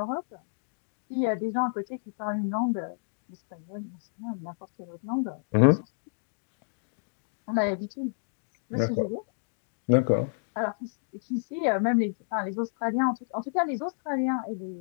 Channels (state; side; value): silent; right; digital silence